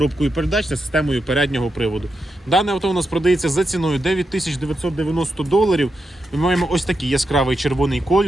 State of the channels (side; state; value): both; normal; correlation 0.86